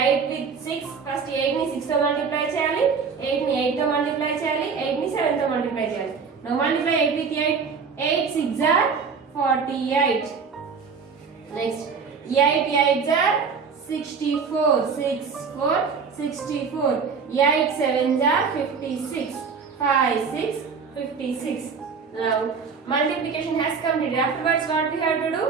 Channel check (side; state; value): left; quieter; 5.6 dB